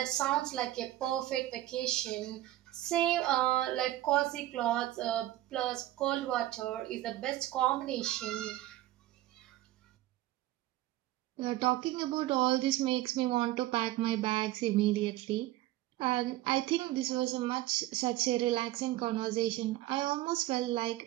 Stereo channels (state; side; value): quieter; left; 15.4 dB